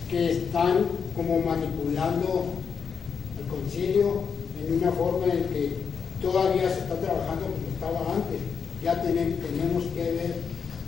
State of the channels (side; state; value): right; quieter; 6.3 dB